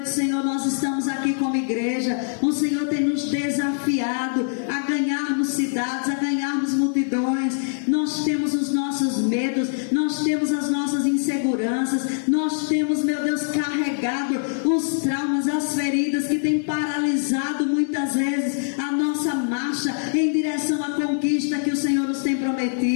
Senhor, nós estamos aqui como igreja. O Senhor tem nos desafiado a ganharmos cidades, a ganharmos multidões. Nós temos os nossos medos, nós temos as nossas inseguranças, nós temos, meu Deus, carregado os traumas, as feridas que têm paralisado muitas vezes a nossa marcha em direção à conquista que o Senhor nos tem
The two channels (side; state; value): right; silent; digital silence